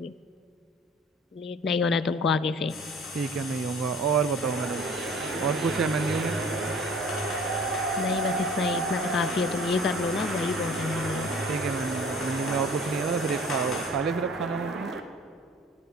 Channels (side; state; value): both; normal; correlation 0.48